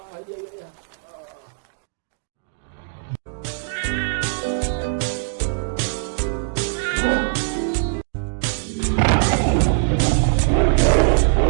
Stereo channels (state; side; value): silent; left; digital silence